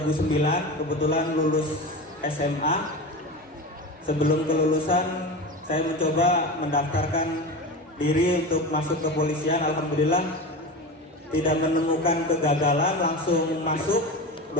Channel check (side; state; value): both; normal; correlation 0.27